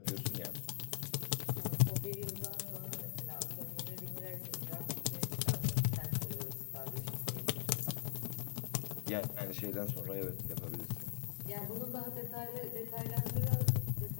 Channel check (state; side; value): silent; right; digital silence